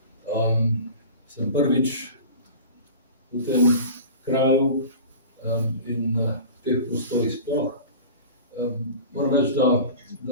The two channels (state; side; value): inverted; both; correlation -0.37